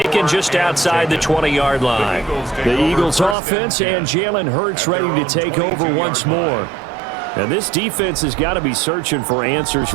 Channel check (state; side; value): drops out; left; at 3.4 s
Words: just outside the 20-yard line. The Eagles offense and Jalen Hurts ready to take over once more. And this defense has got to be searching for answers